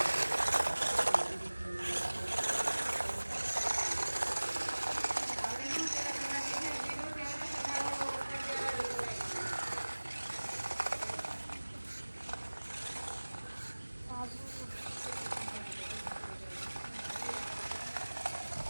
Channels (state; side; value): inverted; both; correlation -1.00